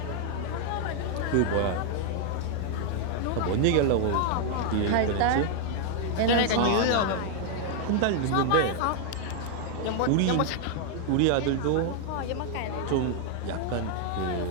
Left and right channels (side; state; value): both; different; correlation 0.00